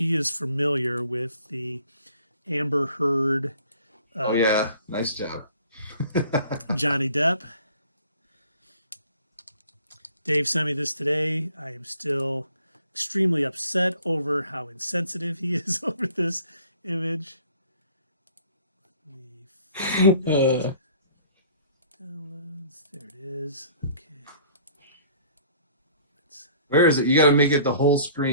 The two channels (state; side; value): inverted; both; correlation -0.54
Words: is familiar with the Amber Heard. Oh, yeah. Nice job. Johnny Depp. Dave sent me this today. I am still extremely upset over how insensitive he is over this image. Downloads. There it is. Okay. Where is it? You got to make it the whole